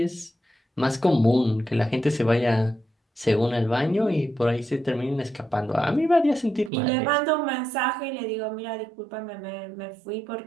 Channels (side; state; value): left; drops out; at 6.7 s